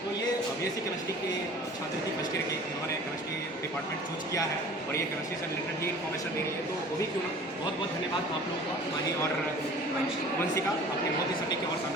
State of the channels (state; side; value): normal; both; correlation 0.45